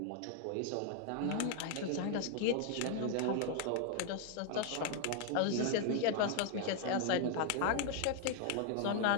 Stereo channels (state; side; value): different; both; correlation 0.00